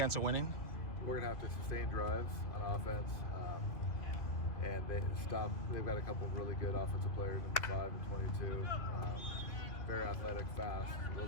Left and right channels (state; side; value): late; right; 2.7 ms